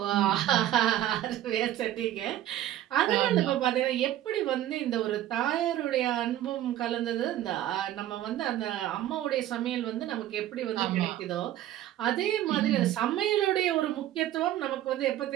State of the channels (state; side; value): quieter; left; 13.0 dB